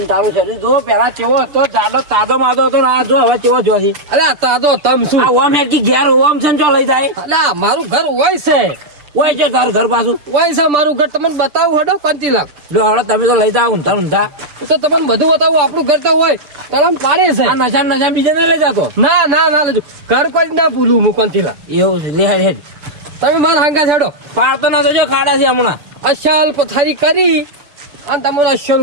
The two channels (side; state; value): left; late; 6.9 ms